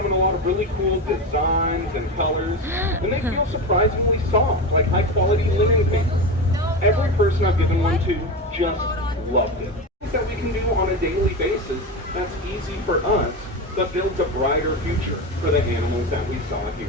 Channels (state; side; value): normal; both; correlation 0.20